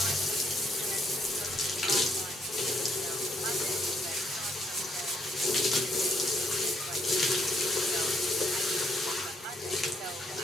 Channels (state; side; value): normal; both; correlation 0.71